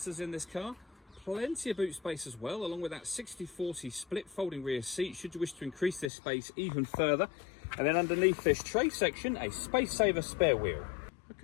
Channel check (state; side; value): drops out; right; at 6.1 s